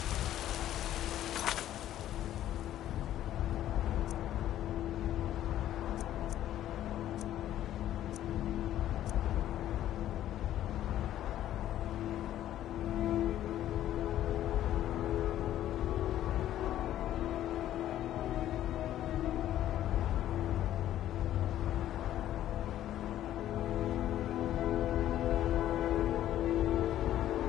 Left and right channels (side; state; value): right; quieter; 12.4 dB